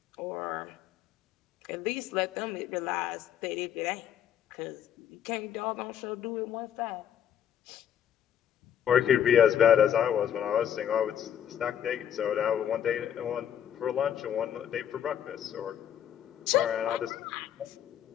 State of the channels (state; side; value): quieter; right; 9.6 dB